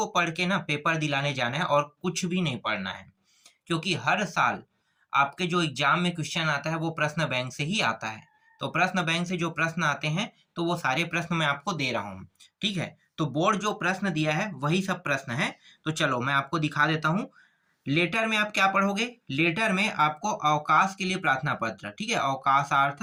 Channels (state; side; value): identical; both; correlation 1.00